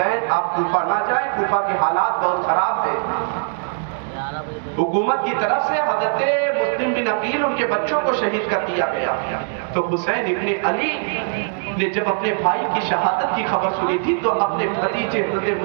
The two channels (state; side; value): silent; left; digital silence